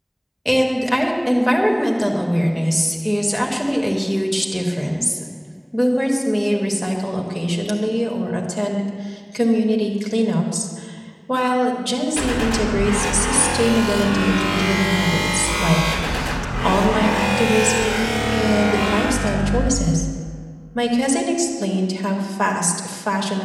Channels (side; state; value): both; identical; correlation 1.00